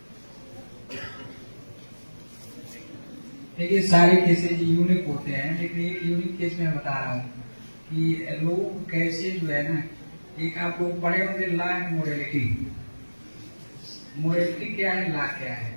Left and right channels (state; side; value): inverted; both; correlation -1.00